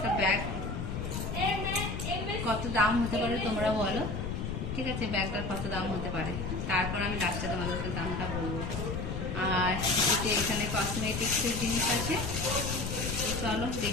ব্যাগ, কত দাম হতে পারে তোমরা বলো, ঠিক আছে, ব্যাগটার কত দাম হতে পারে, তারপর আমি লাস্টে তোমাদেরকে দামটা বলবো। আর এখানে কসমেটিক্সের জিনিস আছে। চলো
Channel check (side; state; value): left; noise; rumble, 4 dB below the sound